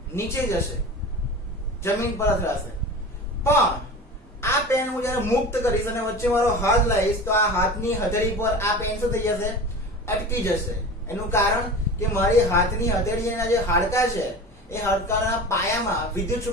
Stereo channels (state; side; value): normal; both; correlation 0.34